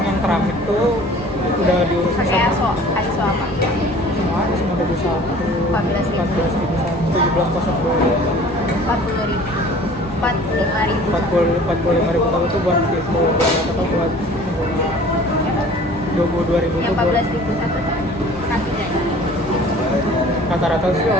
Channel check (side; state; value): both; normal; correlation 0.48